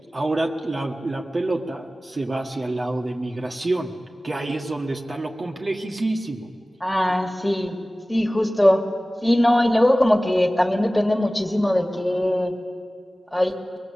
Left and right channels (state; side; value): normal; both; correlation 0.97